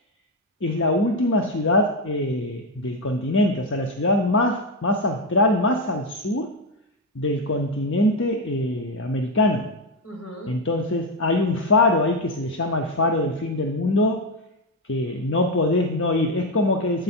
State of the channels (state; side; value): normal; both; correlation 0.10